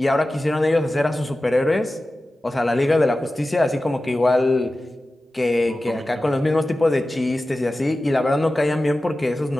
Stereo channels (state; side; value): normal; both; correlation 0.95